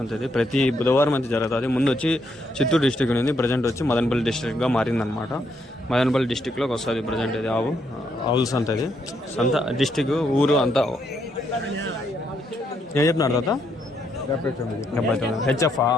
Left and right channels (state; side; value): normal; both; correlation 0.76